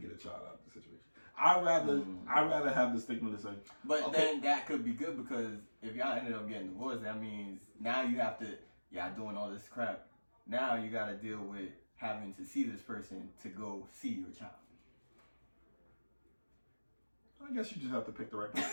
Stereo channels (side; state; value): both; inverted; correlation -1.00